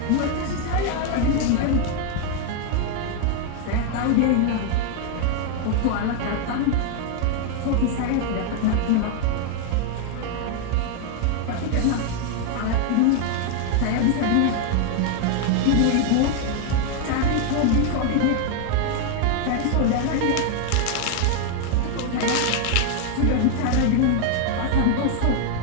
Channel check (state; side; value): different; both; correlation 0.00